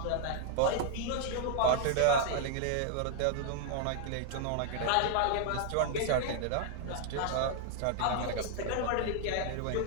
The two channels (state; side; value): different; both; correlation -0.01